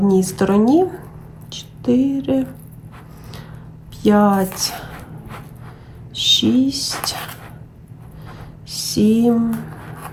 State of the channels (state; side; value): identical; both; correlation 1.00